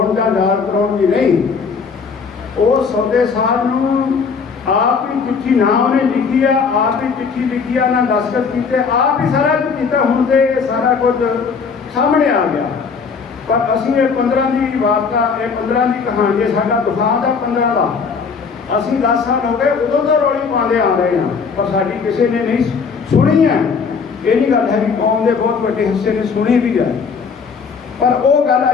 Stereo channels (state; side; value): quieter; right; 5.5 dB